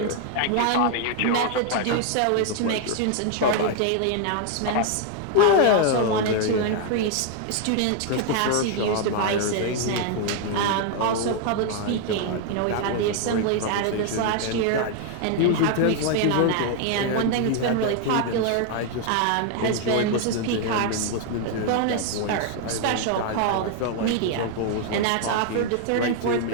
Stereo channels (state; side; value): different; both; correlation 0.00